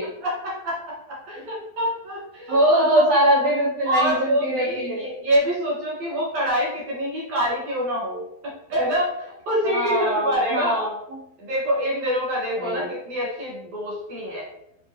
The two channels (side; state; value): left; late; 12 ms